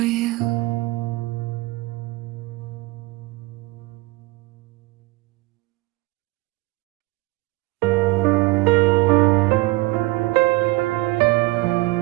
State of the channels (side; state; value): left; quieter; 21.5 dB